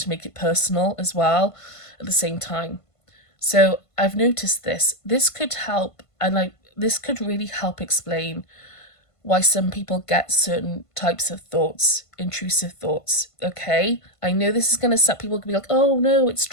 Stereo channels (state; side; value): late; right; 1.5 ms